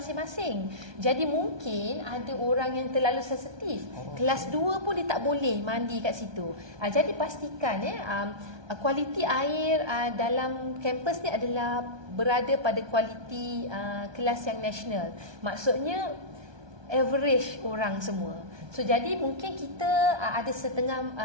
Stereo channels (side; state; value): left; late; 1.2 ms